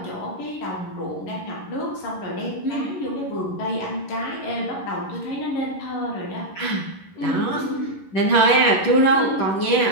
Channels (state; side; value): late; right; 11 ms